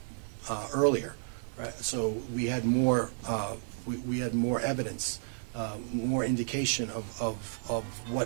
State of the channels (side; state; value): left; silent; 56 dB below the other